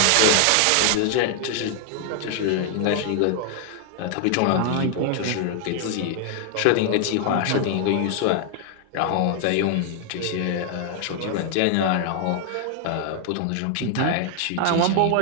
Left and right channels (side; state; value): both; different; correlation 0.00